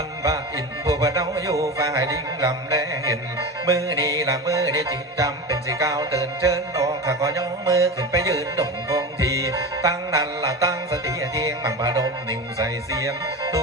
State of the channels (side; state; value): both; normal; correlation 0.26